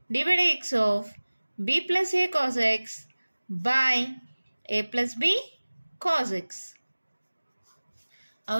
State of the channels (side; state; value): both; inverted; correlation -1.00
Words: D y by X of b plus a cos x by a plus b cos x.